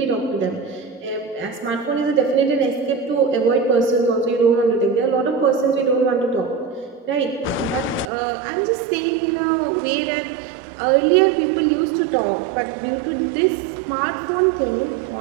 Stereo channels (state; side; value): drops out; left; at 8.1 s